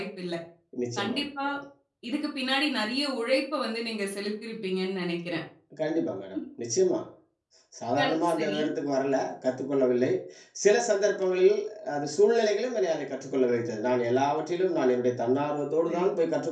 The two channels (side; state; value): both; identical; correlation 1.00